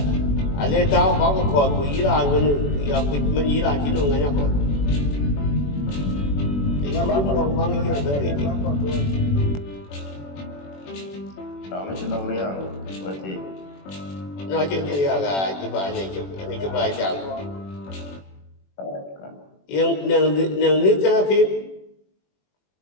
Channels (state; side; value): late; right; 21 ms